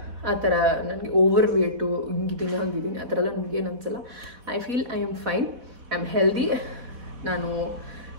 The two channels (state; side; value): late; left; 4.1 ms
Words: ಆ ಥರ ನನಗೆ ಓವರ್ ವೇಟು ಹಿಂಗಿದ್ದೀನಿ ಹಂಗಿದ್ದೀನಿ ಆ ಥರ ಎಲ್ಲ ನನಗೇನು ಅನಿಸಲ್ಲ. I feel I am fine, I am healthy. ನಾನು